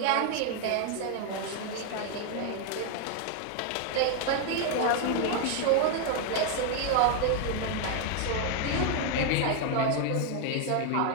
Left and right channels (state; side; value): different; both; correlation 0.01